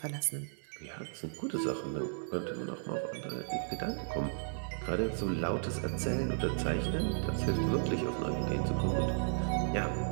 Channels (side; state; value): left; silent; 55 dB below the other